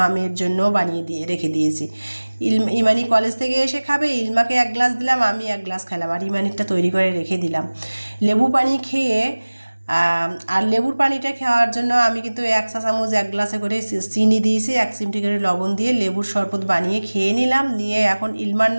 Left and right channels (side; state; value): both; inverted; correlation -1.00